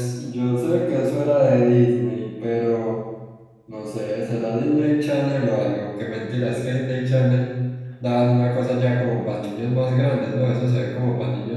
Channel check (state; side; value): identical; both; correlation 1.00